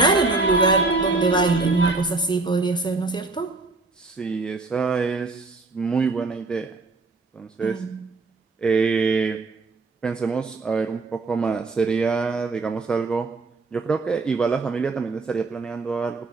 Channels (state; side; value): quieter; left; 3.6 dB